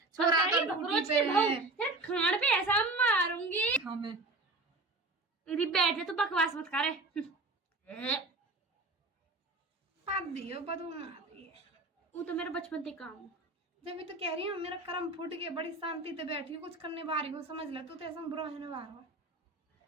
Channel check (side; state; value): left; quieter; 3.1 dB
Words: छोरा तो ड्यूटी पे है। खान पे ऐसा मारूंगी हमें यदि बैठे तो बकवास मत करे। पाद दियो बदू मार रही है वो तो मेरा बचपन से काम। जब मैं तो कह रही हूँ मेरा कर्म फूट के बड़ी शांति से बैठी कुछ करने वाली हो, समझ ले तू तो ऐसा बुरा है ना